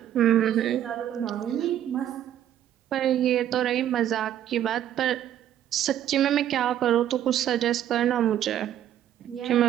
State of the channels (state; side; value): quieter; left; 11.2 dB